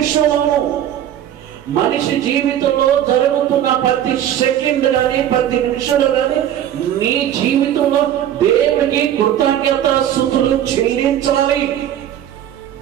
మనిషి జీవితంలో జరుగుతున్న ప్రతి సెకండ్ కానీ, ప్రతి నిమిషంలో కానీ నీ జీవితంలో దేవుడికి కృతజ్ఞతాస్తుతులు చెల్లించాలి.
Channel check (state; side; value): quieter; left; 10.9 dB